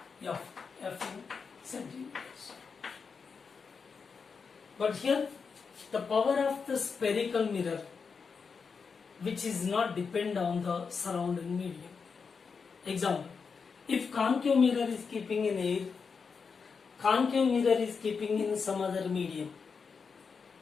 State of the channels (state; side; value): quieter; right; 5.5 dB